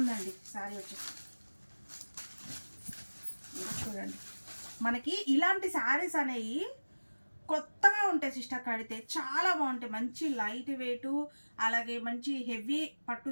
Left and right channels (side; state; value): both; inverted; correlation -1.00